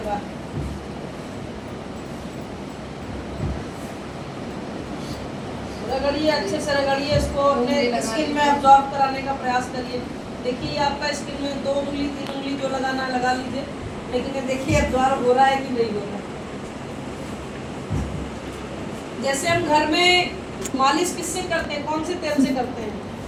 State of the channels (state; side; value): identical; both; correlation 1.00